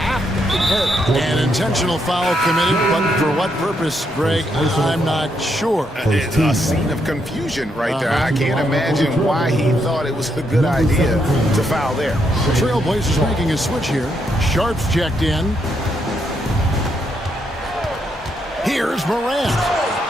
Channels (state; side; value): normal; both; correlation 0.78